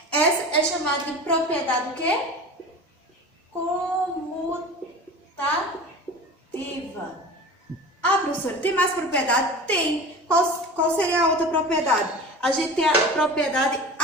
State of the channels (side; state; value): both; normal; correlation 0.35